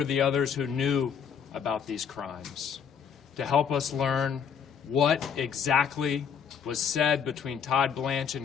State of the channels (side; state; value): right; quieter; 7.4 dB